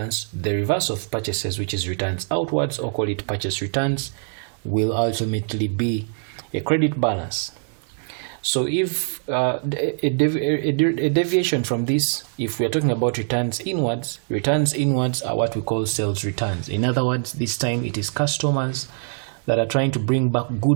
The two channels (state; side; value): silent; left; 61 dB below the other